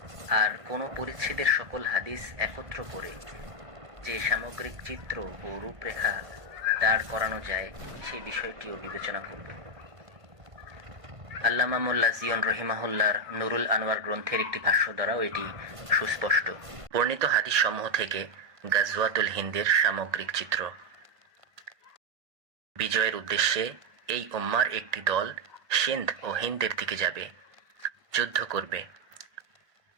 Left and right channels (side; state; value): left; late; 1.8 ms